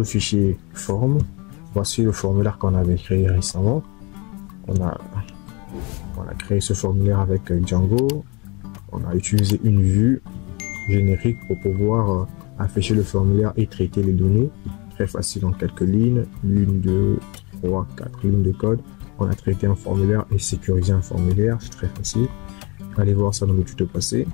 fichier forme. Voici le formulaire qu'on avait créé récemment. On a créé ce formulaire avec Django. On a utilisé une vue générique pour pouvoir afficher le formulaire et traiter les données. Très facile en quelques lignes. 1, 2, 3, 4 lignes de code. On a traité un formulaire et sécurisé un formulaire. C'est très facile. Allez voir ça dans le tuto passé.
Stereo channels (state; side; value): quieter; right; 28.4 dB